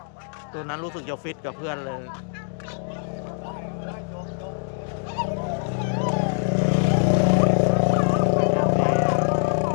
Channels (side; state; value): right; silent; 63 dB below the other